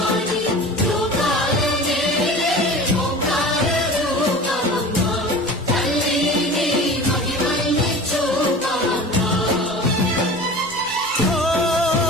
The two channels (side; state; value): both; normal; correlation 0.38